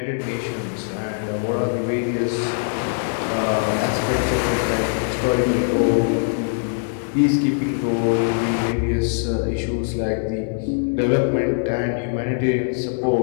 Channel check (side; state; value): right; silent; 64 dB below the other